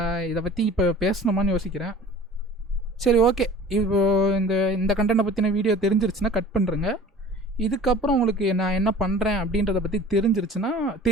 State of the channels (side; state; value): both; normal; correlation 0.44